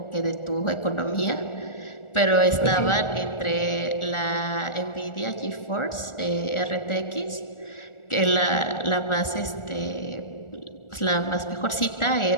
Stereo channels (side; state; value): right; late; 1.4 ms